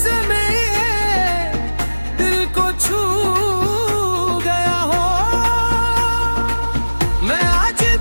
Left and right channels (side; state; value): both; inverted; correlation -1.00